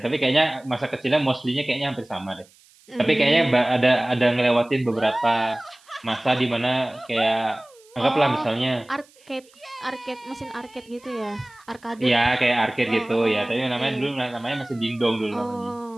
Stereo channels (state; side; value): noise; right; hiss, 29 dB below the sound